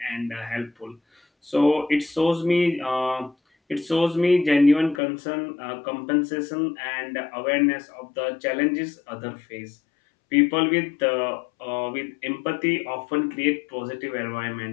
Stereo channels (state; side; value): drops out; right; at 5.0 s